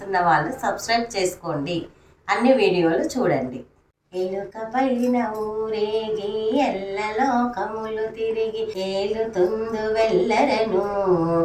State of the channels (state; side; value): identical; both; correlation 1.00